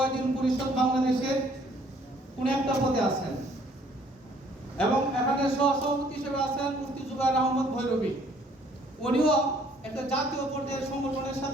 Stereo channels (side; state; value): both; normal; correlation 0.61